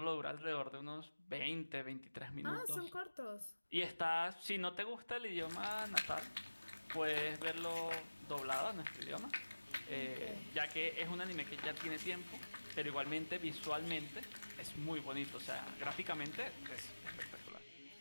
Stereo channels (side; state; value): both; inverted; correlation -1.00